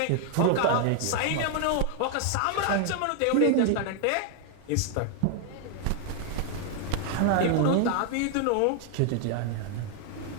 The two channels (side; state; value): both; different; correlation 0.00